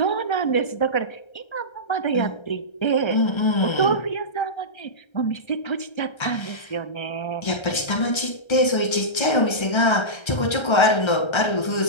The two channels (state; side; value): late; right; 1.3 ms